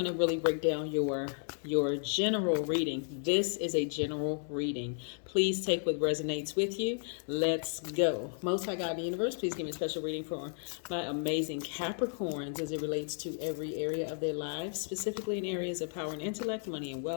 to really break down your general reading. This is a general reading. Please take what resonates with you. Let's go. Most High God in the universe, please give me a special reading for my amazing Capricorns as it relates to every area of their lives, specifically in areas of power and intellect, money and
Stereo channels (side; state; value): right; silent; 56 dB below the other